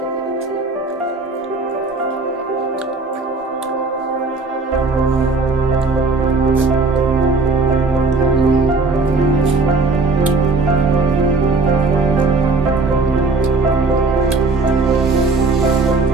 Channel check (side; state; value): left; quieter; 3.7 dB